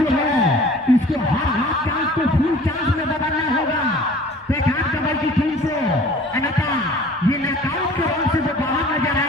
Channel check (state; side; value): normal; both; correlation 0.47